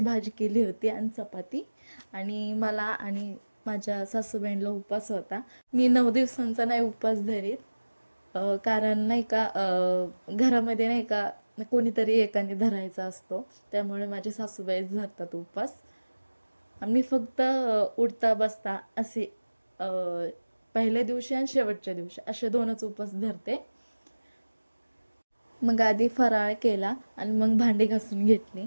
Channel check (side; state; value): both; inverted; correlation -1.00